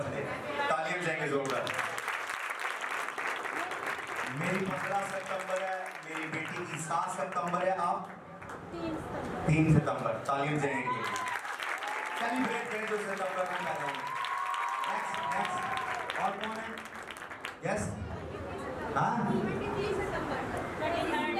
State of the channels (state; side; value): identical; both; correlation 1.00